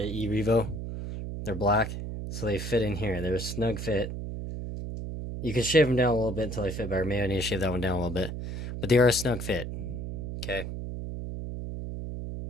E-Revo. They're black. So they fit in here. They're a snug fit. You can shave them down a little bit until they fit better. Maybe I need to shave that one down a little bit. But they are a snug fit. Okay.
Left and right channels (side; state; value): right; noise; hum, 6 dB below the sound